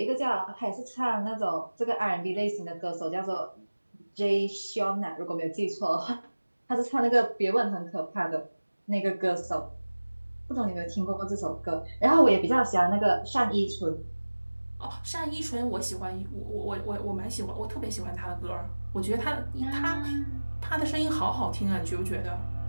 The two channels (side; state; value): both; inverted; correlation -1.00